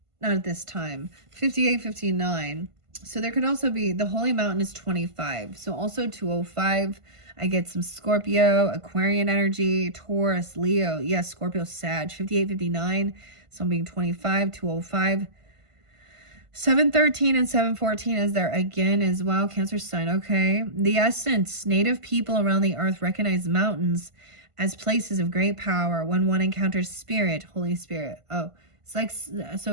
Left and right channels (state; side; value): late; left; 1.5 ms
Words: Not at this time. 58, 59. So there could also be, the Holy Mountain is 25. So also 205. I get some Scorpio, Aquarian energy, Taurus, Leo. Yes, Scorpio, Sag. 58, 59. So I'm being 25, 205. 713 and 714 is there again as well. Cancer sign. Okay. The essence. Native people around the earth recognize mountains as places of great power when one encounters spirit, Holy Spirit. Oh. It's